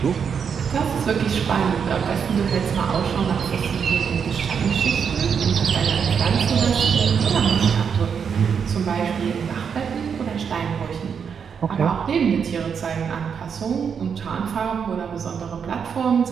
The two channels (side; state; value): left; quieter; 6.8 dB